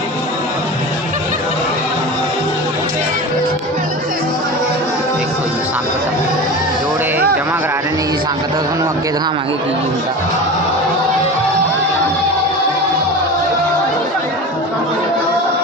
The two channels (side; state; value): both; normal; correlation 0.30